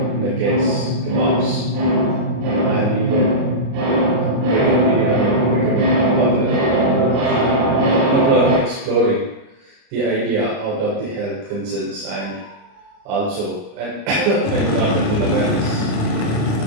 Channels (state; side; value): late; left; 33 ms